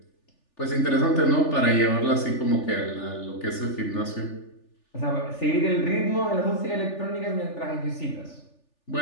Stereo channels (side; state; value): right; late; 3.4 ms